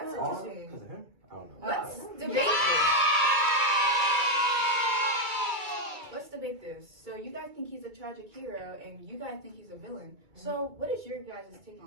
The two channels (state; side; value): late; left; 2.3 ms